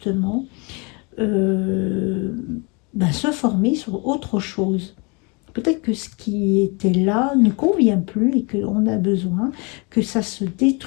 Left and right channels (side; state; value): right; quieter; 31.0 dB